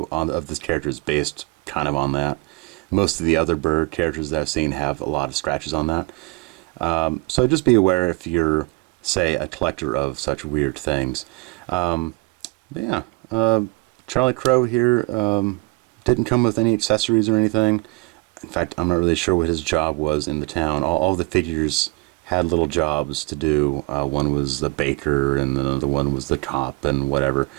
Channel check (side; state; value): left; quieter; 25.5 dB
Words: of this character is based kind of on that. Most of the other bird characters that I've seen have a lot of scratches on that. So just be aware if you're, say, a collector of such weird things. But yeah, Charlie Crow here didn't come with any accessories or anything. In fact, I'm not really sure what his job was in the town. All the figures had little jobs to do. One was the baker, and the other one was the cop, and whatever.